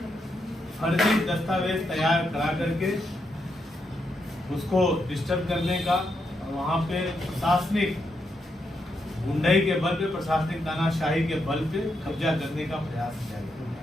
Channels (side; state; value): both; normal; correlation 0.81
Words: फर्जी दस्तावेज तैयार करा करके उसको डिस्टर्ब करने का, वहां पे प्रशासनिक गुंडाई के बल पे, प्रशासनिक तानाशाही के बल पे कब्जा करने का प्रयास किया